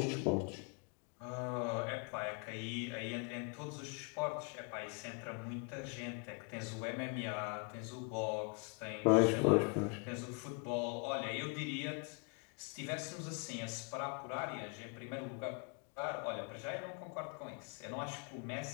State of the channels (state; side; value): quieter; right; 35.6 dB